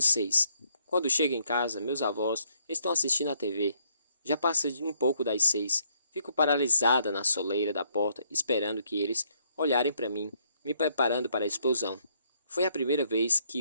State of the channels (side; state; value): both; inverted; correlation -0.71